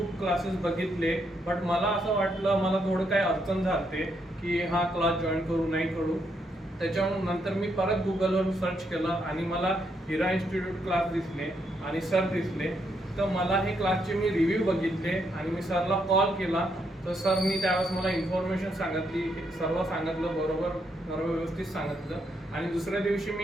क्लासेस बघितले, बट मला असं वाटलं मला थोडं काही अडचण झाली की हा क्लास जॉईन करू नाही करू. त्याच्यानंतर मी परत गुगलवर सर्च केलं आणि मला हिरा इन्स्टिट्यूट क्लास दिसले आणि सर दिसले. तर मला हे क्लासचे मी रिव्ह्यू बघितले आणि मी सरला कॉल केला. तर सरनी त्यावेळेस मला इन्फॉर्मेशन सांगितली, सर्व सांगितलं, बरोबर सर्व व्यवस्थित सांगितलं. आणि दुसऱ्या दिवशी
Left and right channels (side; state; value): both; normal; correlation 0.77